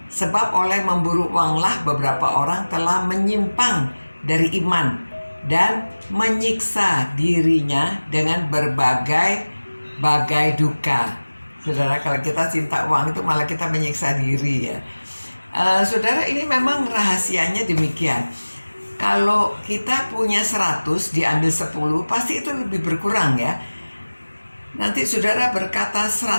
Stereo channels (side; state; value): both; inverted; correlation -1.00